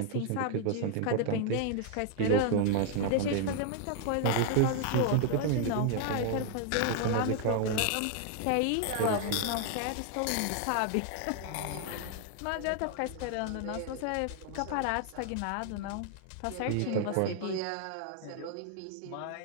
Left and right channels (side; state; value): both; different; correlation 0.00